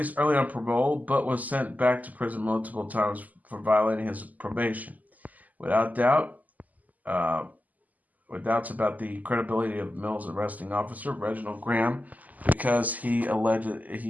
early on parole, but was sent back to prison multiple times for violating his probation. Without doubt, with doubts about the credibility of Mill's arresting officer, Reginald Graham, because he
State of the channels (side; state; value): left; late; 0.079 ms